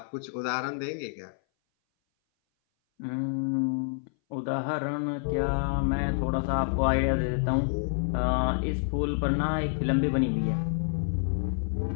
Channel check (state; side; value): silent; right; 58 dB below the other